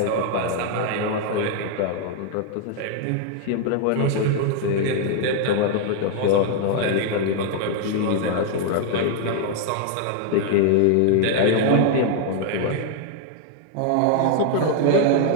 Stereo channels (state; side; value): different; both; correlation 0.00